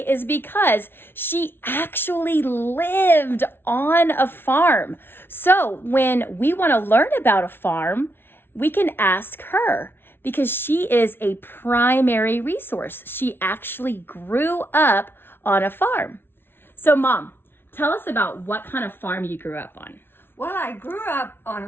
is because she actually lived on a farm. So when we want to learn about a farm, we can ask her because she is a primary resource. She actually grew up on a farm. So Mom, tell us about what kind of farm you grew up on. Well, I grew up on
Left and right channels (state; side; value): late; right; 0.11 ms